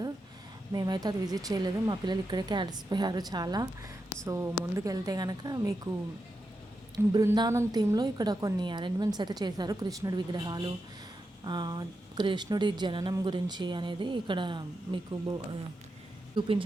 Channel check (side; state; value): both; normal; correlation 0.87